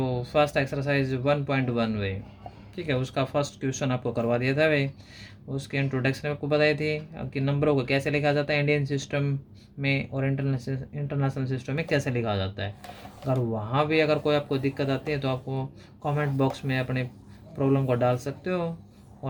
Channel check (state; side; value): identical; both; correlation 1.00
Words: फर्स्ट एक्सरसाइज 1.1 भाई, ठीक है, उसका फर्स्ट क्वेश्चन आपको करवा दिया था भाई। उसके इंट्रोडक्शन आपको बताई थी कि नंबरों को कैसे लिखा जाता है इंडियन सिस्टम में और इंटरनेशनल सिस्टम में कैसे लिखा जाता है। अगर वहाँ भी अगर कोई आपको दिक्कत आती है तो आपको कमेंट बॉक्स में अपने प्रॉब्लम को डाल सकते हो